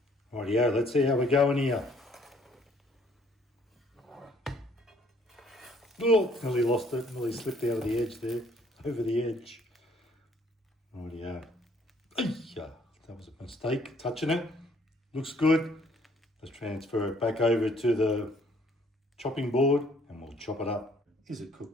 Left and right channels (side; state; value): both; normal; correlation 0.62